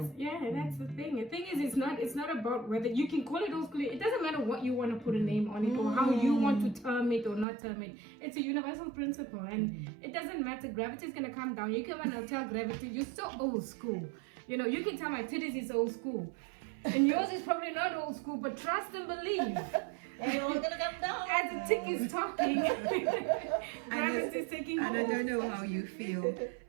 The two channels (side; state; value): left; drops out; at 7.5 s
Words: thing. The thing is, it's not about whether you can call it old school. It doesn't matter what you want to put a name on it or how you want to term it or not term it. It's a universal principle, and it doesn't matter. Gravity is gonna come down. You can and tell gravity, you're so old school. You know, you can tell my titties is old school, and yours is probably not old school. But trust and believe. It's all gonna come down. As the tick is talking, gravity is taking And I hold. don't know how you feel,